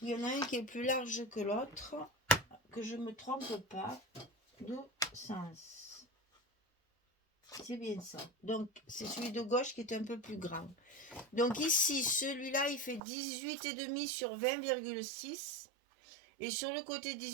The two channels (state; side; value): drops out; left; at 13.0 s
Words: Il y en a un qui est plus large que l'autre, que je me trompe pas de sens. C'est bien ça. Donc, c'est celui de gauche qui est un peu plus grand. Donc ici, celui-là, il fait 18,5 sur 20,6. Et sur le côté